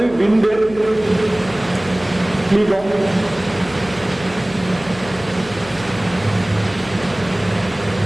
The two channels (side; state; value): left; noise; hum, 18 dB below the sound